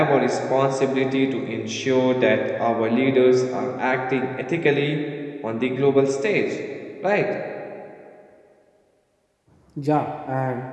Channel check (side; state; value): both; identical; correlation 1.00